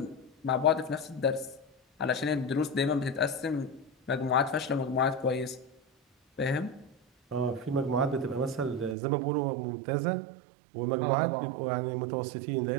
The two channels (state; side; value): drops out; left; at 9.0 s